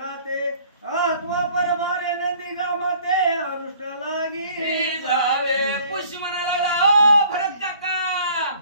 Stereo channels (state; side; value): inverted; both; correlation -0.55